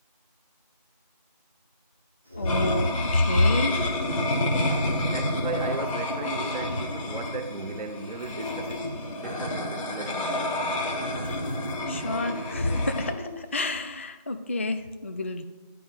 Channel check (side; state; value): both; inverted; correlation -0.55